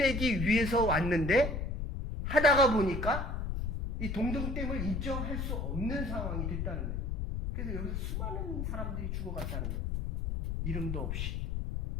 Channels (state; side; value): noise; left; rumble, 2 dB below the sound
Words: 위해서 왔는데 하다가 보니까 이 동등됨을 인정할 수 없는 상황이 됐다는 거예요. 그래서 여기서 수많은 사람들이 죽어갔다는 거예요. 이름도 없이.